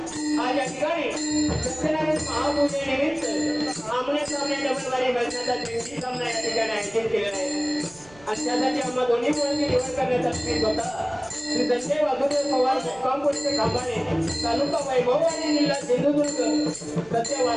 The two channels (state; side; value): noise; right; rumble, 25 dB below the sound